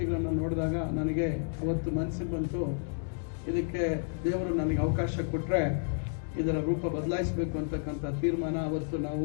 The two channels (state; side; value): silent; right; 57 dB below the other